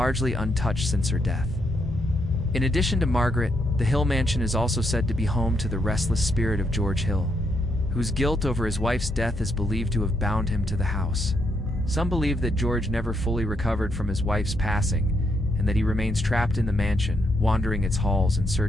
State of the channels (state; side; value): normal; both; correlation 0.77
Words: untouched since her death. In addition to Margaret, the Hill Mansion is also said to be home to the restless spirit of George Hill, whose guilt over his wife's death is believed to have bound him to the house. Some believe that George never fully recovered from his wife's passing, and that he remains trapped in the mansion, wandering its halls in